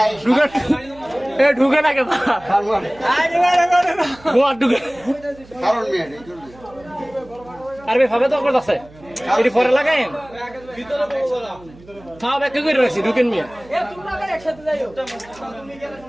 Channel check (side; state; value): right; noise; hum, 23 dB below the sound